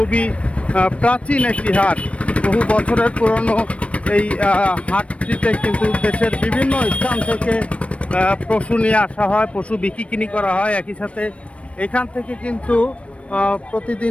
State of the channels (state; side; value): late; right; 0.062 ms